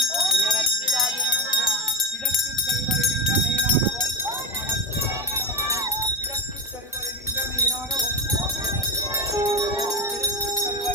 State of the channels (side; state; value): both; normal; correlation 0.15